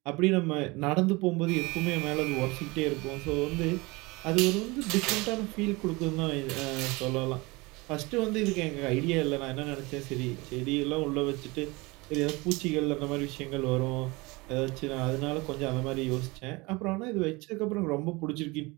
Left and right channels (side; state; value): left; quieter; 24.4 dB